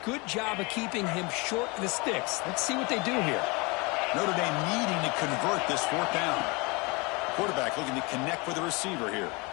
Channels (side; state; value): right; quieter; 27.5 dB